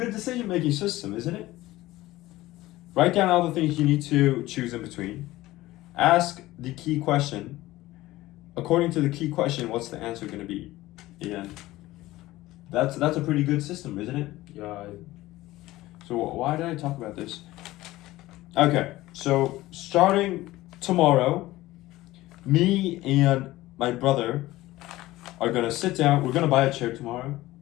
decision-making system, isn't it? Write down all the things you need to choose in between. Ask the key question. According to the key question, what's the answer going to be? And that's a pretty good system, isn't it? Yeah. So why did I talk about this? Okay, so starting tomorrow, me and my brother are going to sit down. We're going to buy a chair tomorrow.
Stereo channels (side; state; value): right; quieter; 17.4 dB